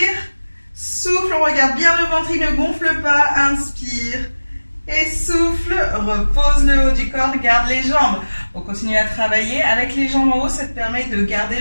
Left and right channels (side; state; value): both; inverted; correlation -1.00